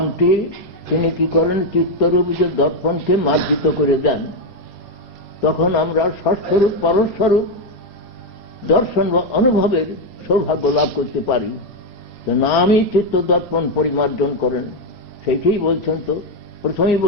তিনি কি করেন, চিত্তরূপ যে দর্পণকে মার্জিত করে দেন। তখন আমরা ষষ্ঠরূপ পরস্বরূপ দর্শন বা অনুভবের সৌভাগ্য লাভ করতে পারি। তো নামই চিত্ত দর্পণ পরিমার্জন করেন, সেইটাই বলছেন। তো প্রথমেই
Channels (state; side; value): normal; both; correlation 0.05